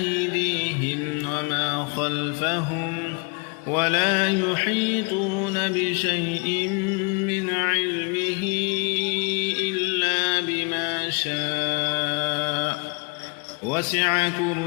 وما خلفهم ولا يحيطون بشيء من علمه إلا بما شاء وسع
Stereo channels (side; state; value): right; quieter; 33.4 dB